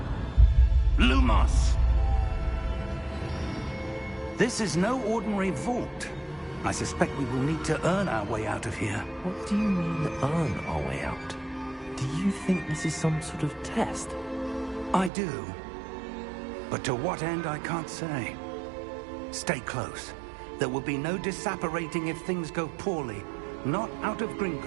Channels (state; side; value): drops out; left; at 15.1 s